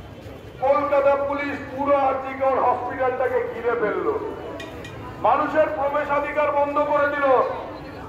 কলকাতা পুলিশ পুরো আরজিকর হসপিটালটাকে ঘিরে ফেললো, মানুষের প্রবেশাধিকার বন্ধ করে দিল।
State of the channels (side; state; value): both; identical; correlation 1.00